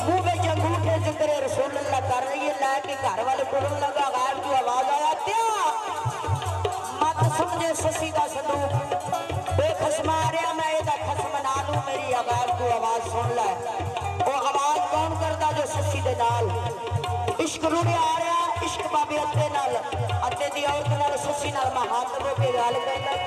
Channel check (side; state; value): both; identical; correlation 1.00